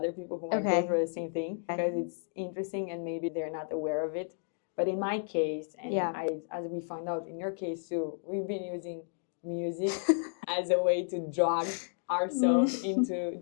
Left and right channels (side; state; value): right; silent; digital silence